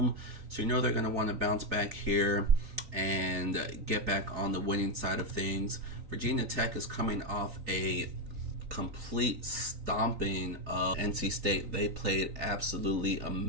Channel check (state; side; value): late; left; 3.9 ms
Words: So you know they're going to want to bounce back here and get back on the winning side of things. Virginia Tech is coming off a complete stomping of NC State. They played absolutely